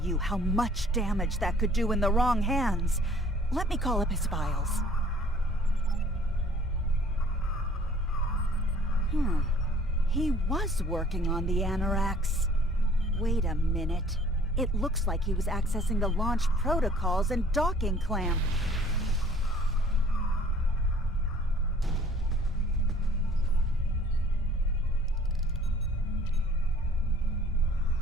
you how much damage that could do in the wrong hands. Let me call up his files. He was working on the Anorax. Wait a minute. It looks like he was accessing the launch protocols and docking clamp.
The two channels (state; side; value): normal; both; correlation 0.54